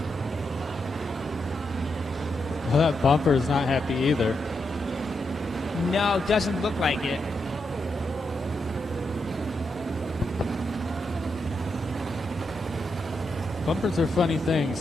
Well, that bumper is not happy either. No, doesn't look like it. Bumpers are funny things.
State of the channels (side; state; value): both; normal; correlation 0.83